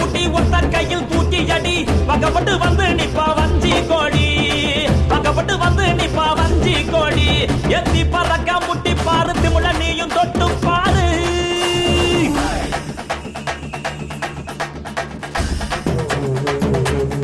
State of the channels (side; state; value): both; identical; correlation 1.00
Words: புட்டி ஒத்த கையில் தூக்கி அடி பக்கப்பட்டு வந்து நிப்பா வஞ்சி கோடி பக்கப்பட்டு வந்து நிப்பா வஞ்சி கோடி எத்தி பறக்க முட்டி பாரு திமுல நீயும் தொட்டு பாரு